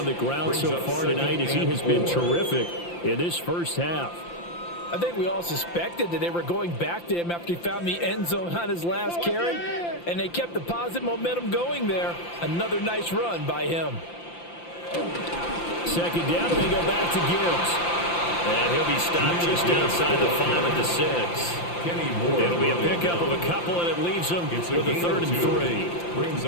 the ground so far tonight as he has been terrific in this first half. I think we all suspected that they were going back to him after he found the end zone on his last carry, and they kept the positive momentum going there. Another nice run by him. Second down, and they go back to Gibbs. And he'll be stopped just outside the 5 at the 6. It'll be a pickup of a couple, and it leaves them with a 3rd and 3.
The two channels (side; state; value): right; late; 5.8 ms